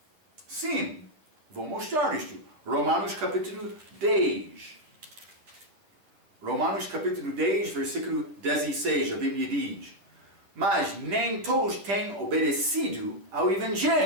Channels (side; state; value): left; late; 10 ms